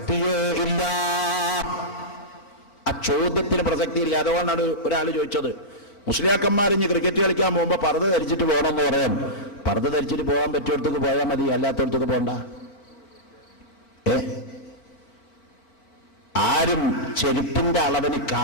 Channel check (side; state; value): right; late; 4.6 ms